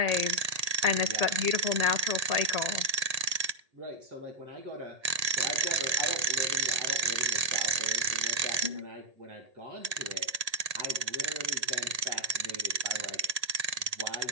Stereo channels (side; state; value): left; late; 1.8 ms